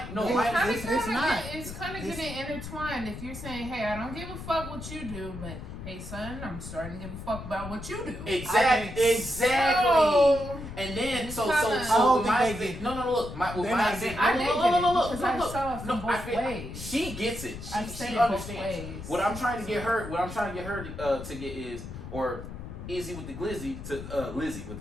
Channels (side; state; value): left; noise; rumble, 10 dB below the sound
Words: it's kind of getting intertwined. If you're saying, hey, I don't give a fuck what you do, but hey son, I'm starting to give a fuck about what you do. Exactly. So, and then it's so kinda- look, my example. I did get it because I Look. saw it from both ways. She gets it. She both understands. ways. What I'm trying to get her to get is, or Izzy with the Glizzy Lizzy